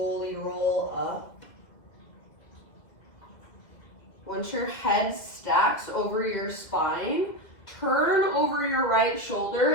roll up. Once your head stacks over your spine, turn over your right shoulder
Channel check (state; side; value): late; right; 2.0 ms